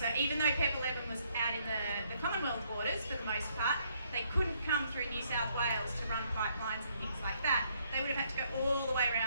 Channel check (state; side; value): inverted; both; correlation -0.70